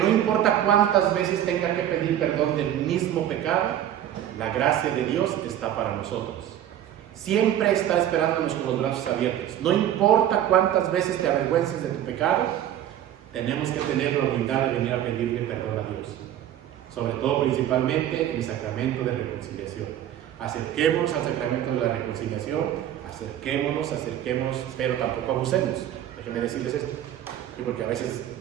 importa cuántas veces tenga que pedir perdón del mismo pecado, la gracia de Dios está para nosotros. Siempre está esperándonos con los brazos abiertos. No importa cuántas veces te avergüences de tu pecado, tenemos que tener la humildad de venir a pedirle perdón a Dios, sobre todo principalmente en el sacramento de reconciliación. Acerquémonos al sacramento de la reconciliación, acerquémonos, pero tampoco abusemos. Déjenme decirles esto, porque a veces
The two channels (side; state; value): left; quieter; 11.4 dB